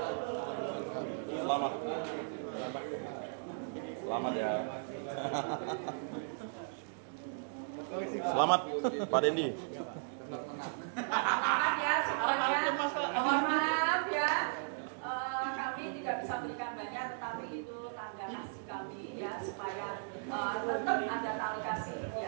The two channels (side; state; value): left; silent; digital silence